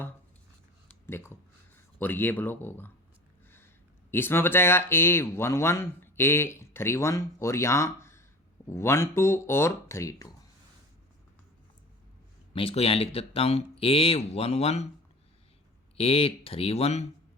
देखो, और ये ब्लॉक होगा। इसमें बचाएगा A11 A31 और यहाँ 12 और 32। मैं इसको यहाँ लिख देता हूँ A11 A31,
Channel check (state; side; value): normal; both; correlation 0.37